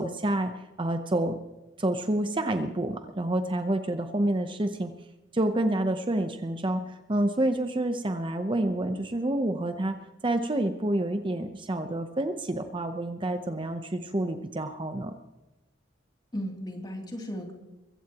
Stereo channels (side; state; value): both; normal; correlation 0.75